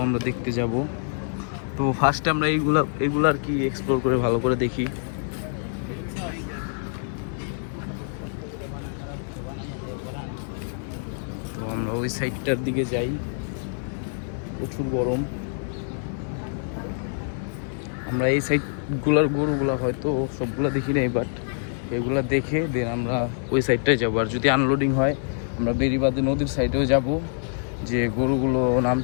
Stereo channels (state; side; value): silent; right; 61 dB below the other